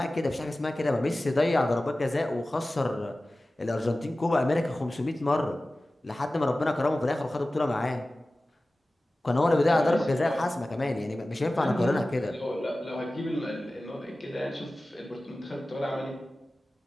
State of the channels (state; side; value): normal; both; correlation 0.96